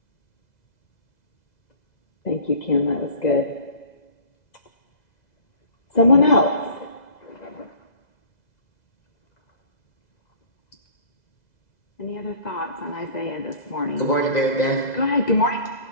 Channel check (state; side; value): late; right; 2.0 ms